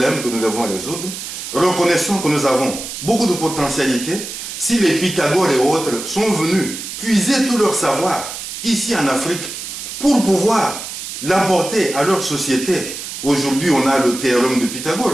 que nous devons résoudre. Reconnaissons que nous avons beaucoup de potentialités. Si les Pythagore et autres sont venus puiser tout leur savoir ici en Afrique pour pouvoir l'apporter à leur société. Aujourd'hui, on a le théorème de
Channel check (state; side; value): noise; right; hiss, 8 dB below the sound